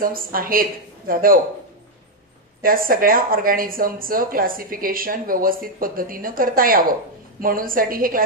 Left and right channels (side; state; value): both; normal; correlation 0.01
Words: आहेत जाधव, त्या सगळ्या ऑर्गॅनिझमचं क्लासिफिकेशन व्यवस्थित पद्धतीनं करता यावं म्हणून साठी हे